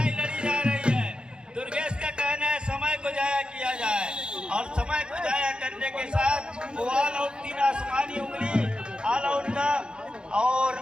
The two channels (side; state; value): left; late; 0.051 ms